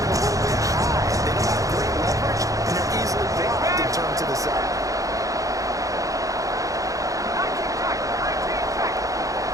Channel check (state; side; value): late; left; 0.16 ms